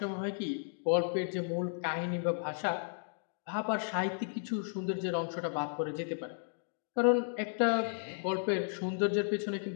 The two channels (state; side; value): silent; right; digital silence